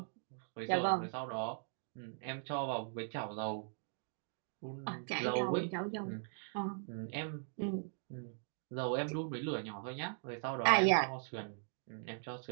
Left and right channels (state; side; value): silent; left; digital silence